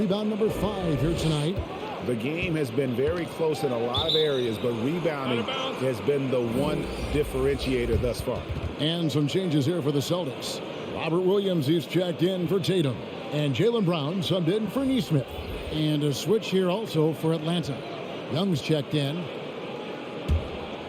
number 5 here tonight. The game has been very close in a lot of areas, but rebounding has been the one differentiator thus far. And some changes here for the Celtics. Robert Williams is checked in for Tatum. And Jaylen Brown subbed in for Nesmith. And a switch here also for Atlanta. Young's checked in.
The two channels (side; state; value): both; identical; correlation 1.00